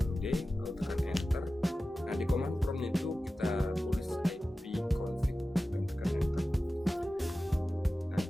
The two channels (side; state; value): both; normal; correlation 0.95